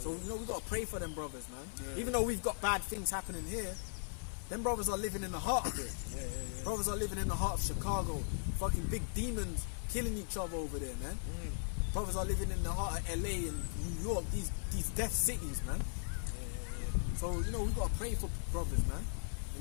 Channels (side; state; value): right; silent; 52 dB below the other